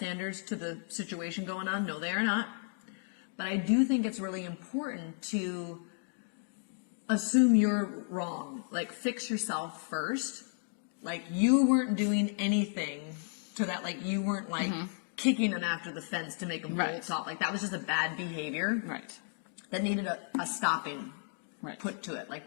to the situation going on? No, they are not. But I do think it's really important to assume you're wrong. Like fix yourself first. Like you weren't doing anything to that. Like you weren't like kicking them after the fence to make them bolt off. Like that was just a bad behavior. Right. That needed a stopping Right. put to it.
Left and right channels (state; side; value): silent; right; 55 dB below the other